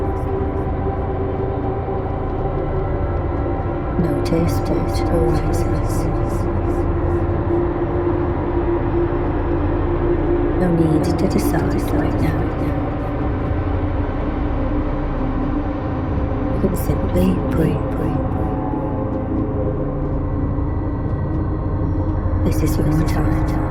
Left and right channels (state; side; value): identical; both; correlation 1.00